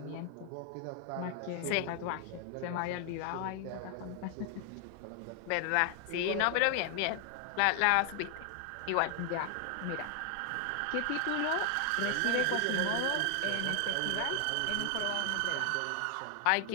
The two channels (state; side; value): different; both; correlation 0.00